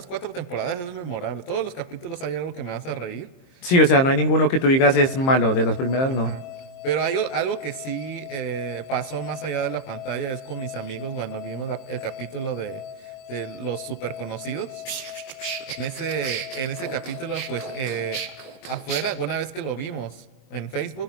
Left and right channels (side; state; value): right; late; 23 ms